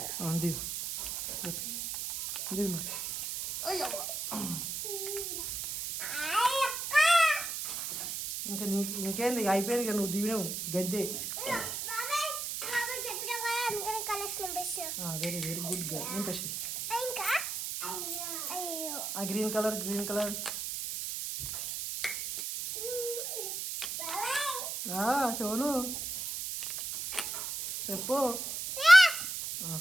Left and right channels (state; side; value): noise; right; hiss, 4 dB below the sound